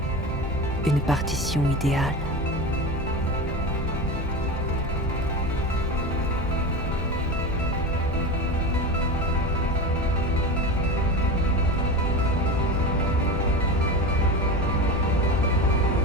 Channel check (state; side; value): normal; both; correlation 0.25